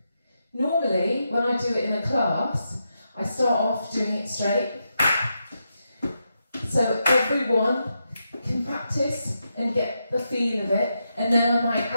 Normally, when I do it in a class, I start off doing it straight. So everyone can practice and get the feel of it, and then I might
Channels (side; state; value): both; inverted; correlation -0.85